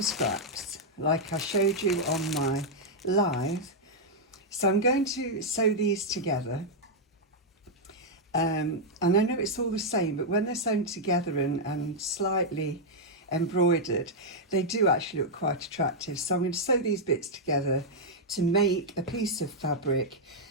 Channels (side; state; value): both; normal; correlation -0.04